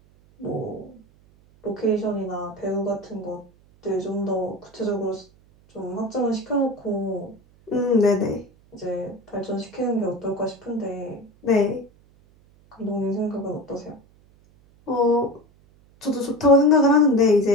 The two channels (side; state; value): right; noise; hum, 29 dB below the sound